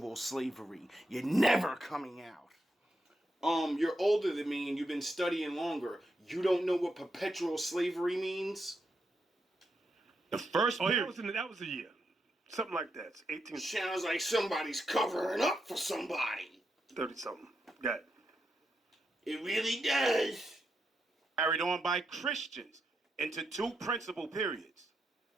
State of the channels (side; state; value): both; normal; correlation 0.83